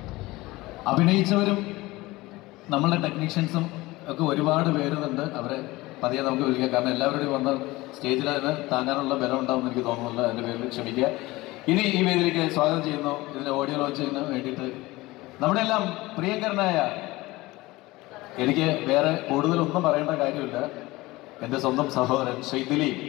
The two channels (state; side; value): quieter; right; 20.1 dB